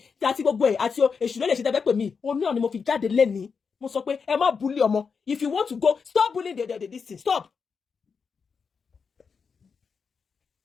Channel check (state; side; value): quieter; right; 5.6 dB